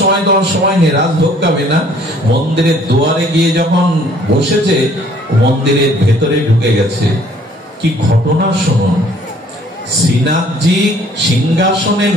তোমার সময় নেই, রাজ ভোগাবে না। মন্দিরের দুয়ারে গিয়ে যখন বসেছে, মন্দিরের ভেতরে ঢুকে গেছে। কি ঘটনা শুনুন। শ্রীনাথজি সিংহাসনে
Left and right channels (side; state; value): both; normal; correlation 0.58